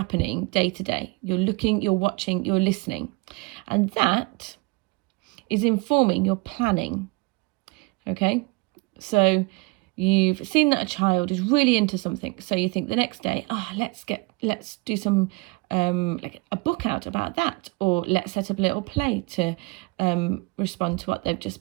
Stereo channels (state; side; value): quieter; left; 25.9 dB